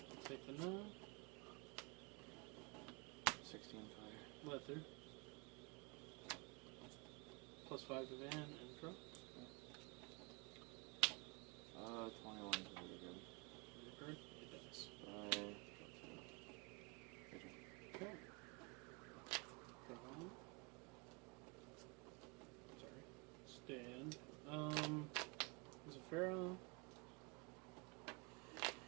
Take the 9. 16 fire. Let through. +5 to Van and draw. 21 is really good. Record. It does. Okay. Draw. Sorry. Stand. There's a Farah.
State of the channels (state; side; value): quieter; left; 29.3 dB